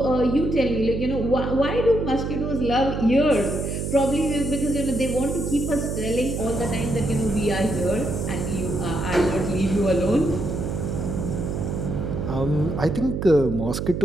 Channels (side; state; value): right; noise; hum, 3 dB below the sound